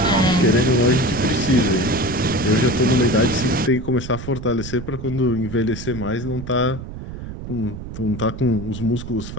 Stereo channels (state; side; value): noise; right; rumble, 10 dB below the sound